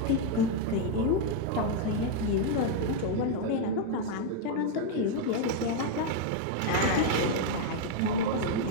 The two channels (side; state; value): both; different; correlation 0.01